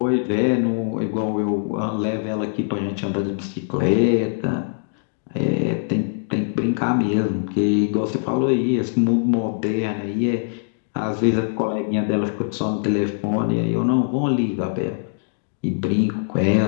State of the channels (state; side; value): silent; right; digital silence